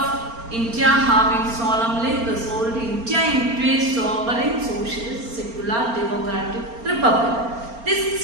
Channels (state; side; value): late; left; 4.3 ms